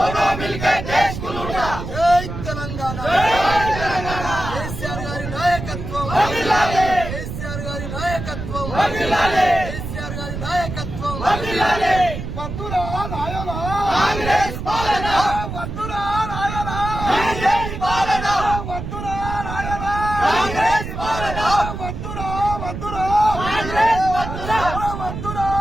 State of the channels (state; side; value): noise; right; rumble, 7 dB below the sound